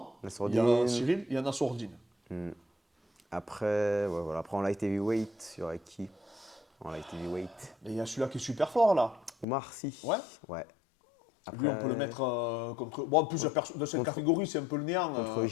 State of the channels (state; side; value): drops out; right; at 9.5 s